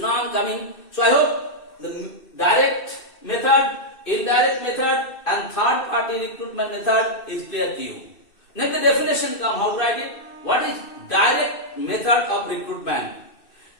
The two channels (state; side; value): late; right; 2.6 ms